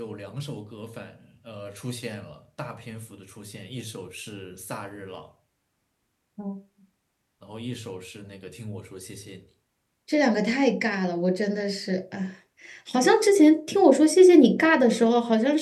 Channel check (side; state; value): both; identical; correlation 1.00